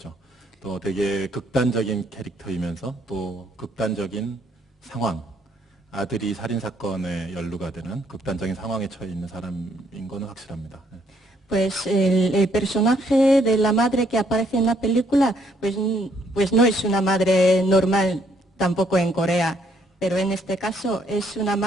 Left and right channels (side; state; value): both; normal; correlation 0.68